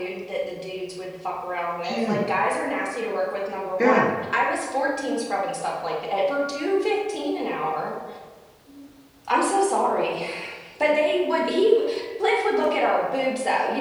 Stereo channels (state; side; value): identical; both; correlation 1.00